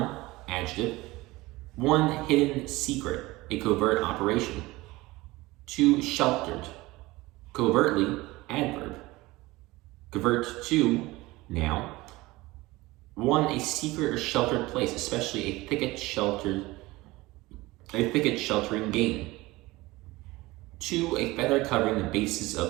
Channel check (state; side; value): quieter; left; 20.3 dB